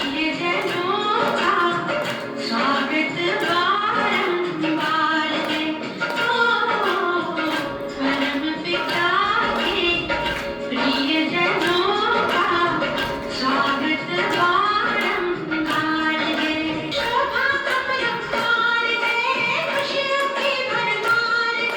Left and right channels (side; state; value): both; identical; correlation 1.00